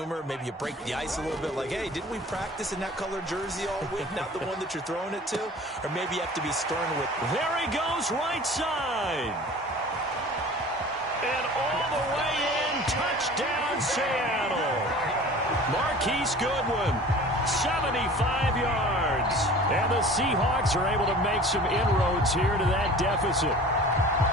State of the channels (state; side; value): normal; both; correlation 0.43